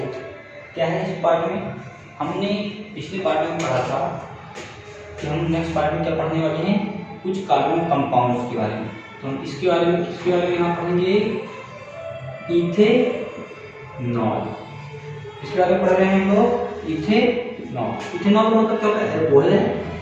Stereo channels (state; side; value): identical; both; correlation 1.00